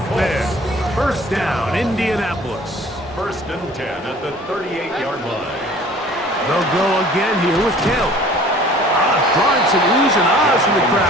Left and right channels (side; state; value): both; normal; correlation 0.50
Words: there. First down, Indianapolis. First and 10 at the 38-yard line. They'll go again here with Taylor. Drawing some oohs and ahs from the